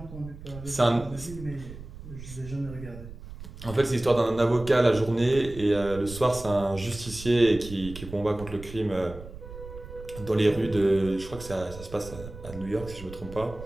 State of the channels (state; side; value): noise; right; rumble, 14 dB below the sound